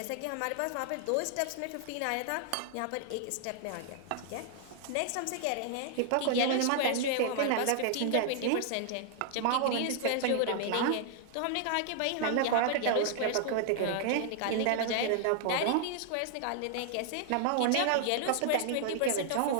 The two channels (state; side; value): different; both; correlation 0.00